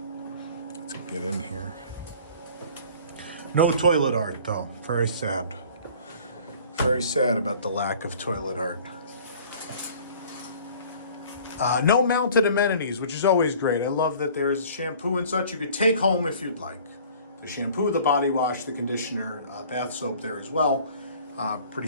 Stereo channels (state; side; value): inverted; both; correlation -0.49